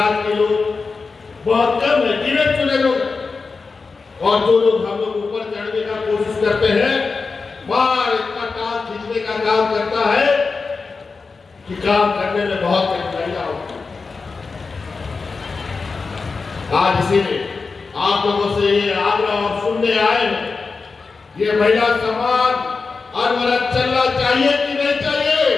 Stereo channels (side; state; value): right; quieter; 4.5 dB